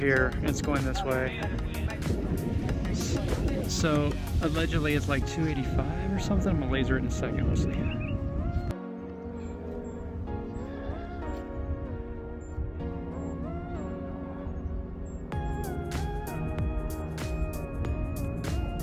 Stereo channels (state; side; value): identical; both; correlation 1.00